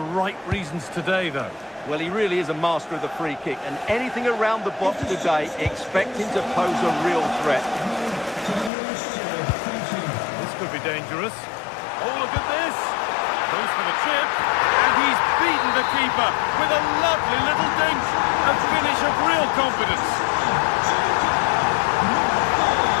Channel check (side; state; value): right; drops out; at 8.7 s